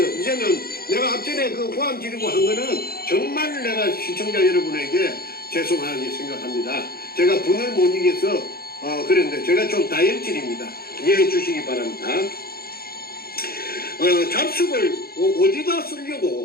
이제는 내가 앞전에 그 고함 지르고 한 거는 정말 내가 시청자 여러분에게 죄송하게 생각합니다. 제가 분을 못 이겨서 그랬는데 제가 좀 다혈질입니다. 이해해 주시기 바랍니다. 잡식을 어디다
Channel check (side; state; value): right; late; 0.44 ms